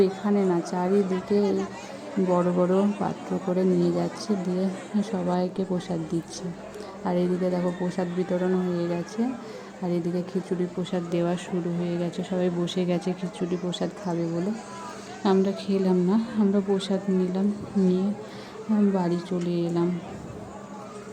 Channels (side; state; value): both; identical; correlation 1.00